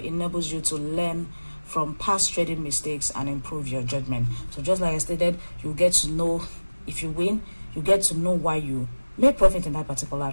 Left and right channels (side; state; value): both; inverted; correlation -1.00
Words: you to learn from past trading mistakes and improve your judgment. So just like I stated, you get to know, if you win, you get to know why you made profit in that particular